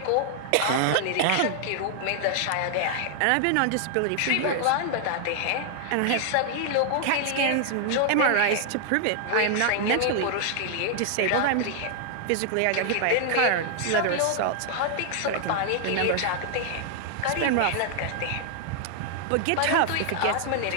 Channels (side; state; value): both; different; correlation 0.00